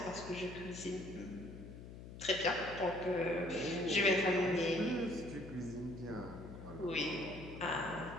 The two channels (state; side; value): noise; left; hum, 13 dB below the sound